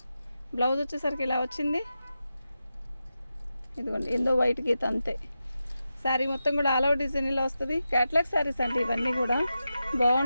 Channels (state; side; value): inverted; both; correlation -0.90